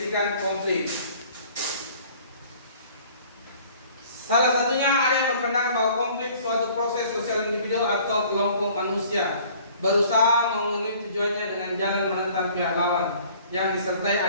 konflik. Salah satunya ada yang berpendapat bahwa konflik suatu proses sosial individu atau kelompok manusia berusaha memenuhi tujuannya dengan jalan menentang pihak lawan yang disertai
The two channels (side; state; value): both; inverted; correlation -0.53